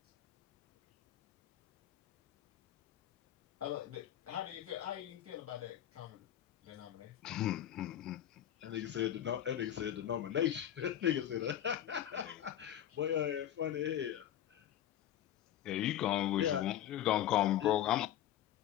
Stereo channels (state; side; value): quieter; right; 11.3 dB